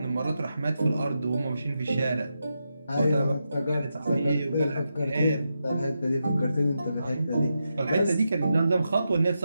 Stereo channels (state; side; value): inverted; both; correlation -0.87